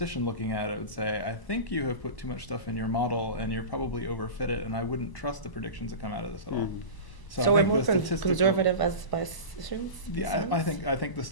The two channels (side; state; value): right; late; 1.0 ms